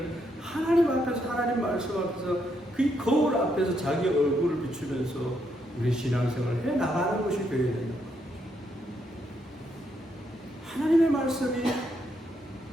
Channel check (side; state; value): both; normal; correlation 0.77